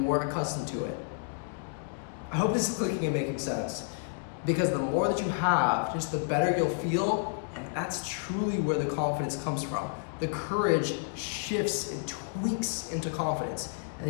accustomed to it. I hope this is clicking and making sense, because the more that you have, just the better you'll feel, and that's truly where the confidence comes from the courage shifts and tweaks into confidence. And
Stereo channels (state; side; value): silent; right; digital silence